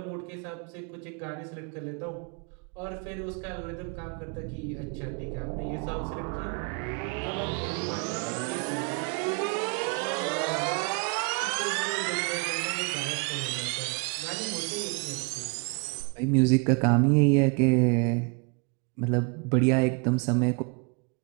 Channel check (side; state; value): left; quieter; 35.1 dB